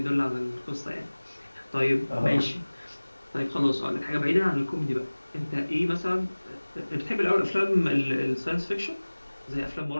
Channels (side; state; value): both; inverted; correlation -1.00